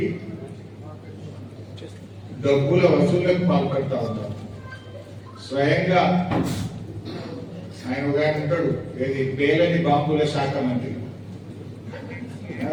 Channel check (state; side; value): identical; both; correlation 1.00